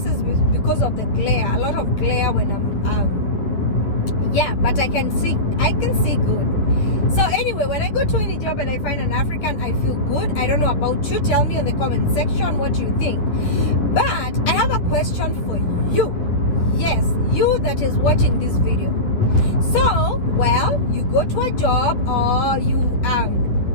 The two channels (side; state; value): right; late; 10 ms